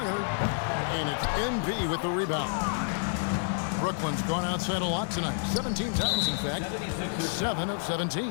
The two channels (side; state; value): right; silent; 57 dB below the other